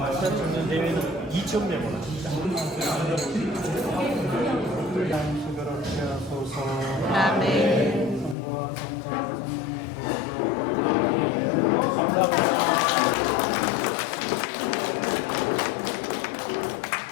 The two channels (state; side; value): drops out; right; at 8.3 s